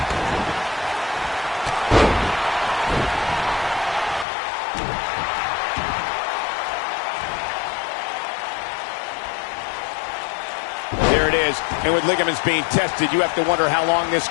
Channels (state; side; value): drops out; right; at 4.2 s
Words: There it is. And with ligaments being tested, you have to wonder how long this